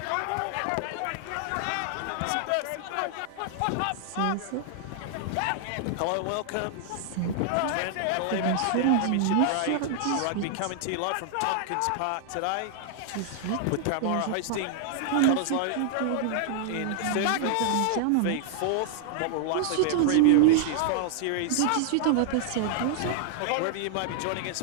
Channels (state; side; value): different; both; correlation -0.01